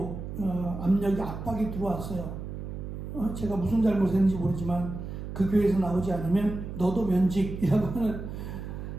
압박이 들어왔어요. 제가 무슨 잘못했는지 모르지만 그 교회에서 나오지 않으면 너도 면직이라고 하는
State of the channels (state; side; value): noise; right; hum, 8 dB below the sound